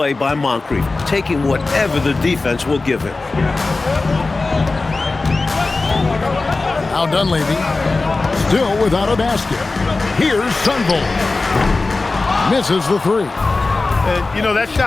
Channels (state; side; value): quieter; right; 3.5 dB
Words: by Moncrief, taking whatever the defense will give him. Now Dunleavy, still without a basket. Here's Sunvold. Misses the 3. And, you know, that